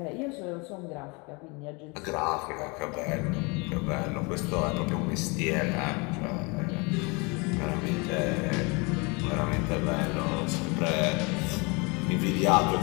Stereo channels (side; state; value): right; quieter; 29.2 dB